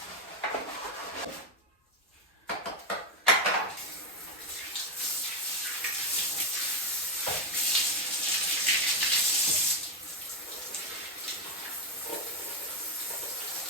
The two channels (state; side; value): normal; both; correlation 0.07